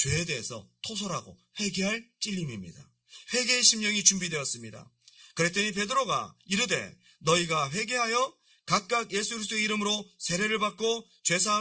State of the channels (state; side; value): identical; both; correlation 1.00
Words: 대해서 토설하고 회개할 찔림입니다. 회개의 심령이 준비되었습니다. 그랬더니 베드로가 이르되 너희가 회개하여 각각 예수 그리스도의 이름으로 세례를 받고